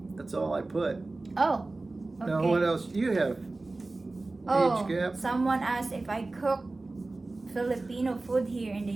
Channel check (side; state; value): left; quieter; 3.2 dB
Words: That's all I put. Oh, okay. Now what else do you have? Oh, Age gap? someone asked if I cook Filipino food here in the